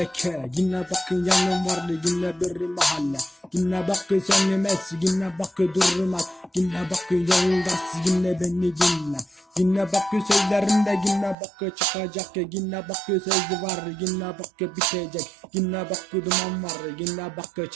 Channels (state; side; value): drops out; left; at 11.4 s